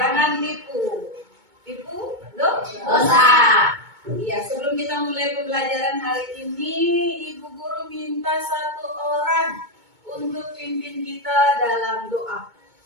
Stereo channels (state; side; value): late; left; 2.2 ms